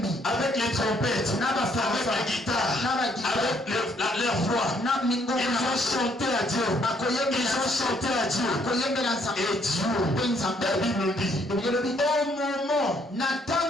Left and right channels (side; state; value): both; normal; correlation 0.68